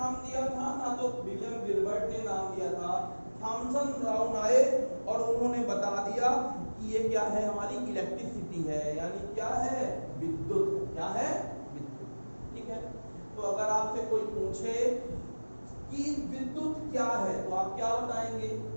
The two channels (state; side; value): inverted; both; correlation -1.00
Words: दिया था, ना तो विलियम गिलबर्ट ने नाम दिया था। थॉमसन ब्राउन आए और उन्होंने बता दिया कि ये क्या है? हमारी इलेक्ट्रिसिटी है, यानी क्या है? विद्युत। क्या है? विद्युत। ठीक है। तो अगर आपसे कोई पूछे कि विद्युत क्या है तो आप क्या बताएंगे?